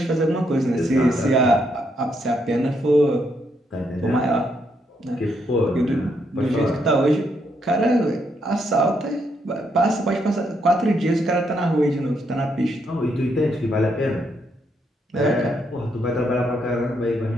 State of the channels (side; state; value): both; normal; correlation 0.76